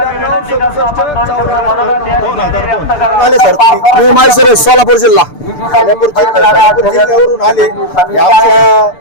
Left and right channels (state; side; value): late; right; 6.8 ms